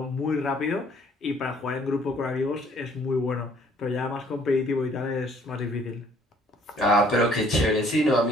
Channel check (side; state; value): both; normal; correlation 0.60